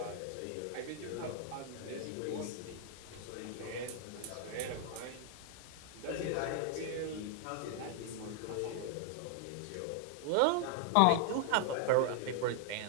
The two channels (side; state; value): both; different; correlation 0.00